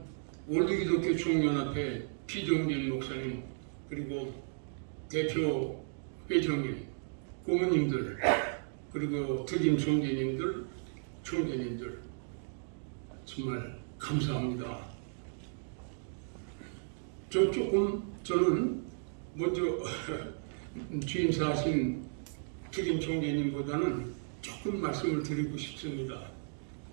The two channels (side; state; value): left; silent; digital silence